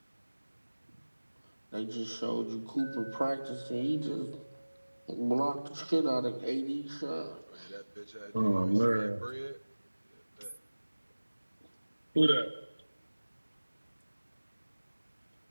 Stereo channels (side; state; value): both; inverted; correlation -1.00